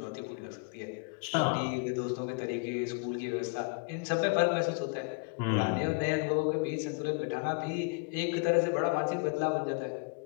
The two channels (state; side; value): quieter; right; 35.7 dB